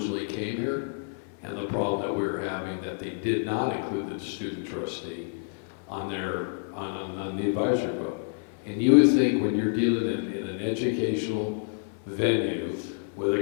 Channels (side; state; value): right; silent; 59 dB below the other